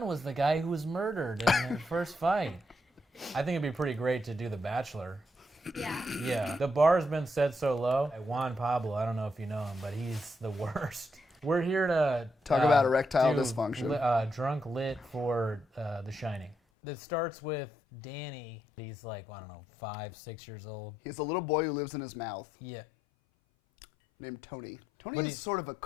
was the guy who was murdered in the first fight. I think it'd be pretty great to do The Bachelor. Yeah. The bar's been set so low. Juan Pablo, I don't know if you know him, but he's the worst. We're here to talk about erectile dysfunction. Drunk lit for The Shining. It starts with Danny. He's like, I don't know, 5, 6 years old. He's a little boy who lives in his mouth. Yeah. Named Tony. Tony is sort of a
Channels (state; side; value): drops out; right; at 16.6 s